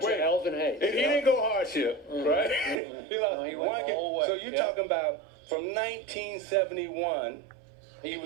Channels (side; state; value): left; drops out; at 2.8 s